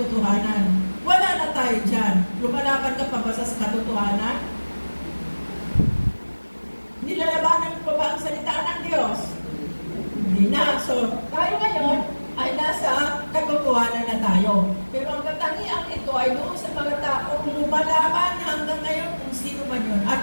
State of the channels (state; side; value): inverted; both; correlation -1.00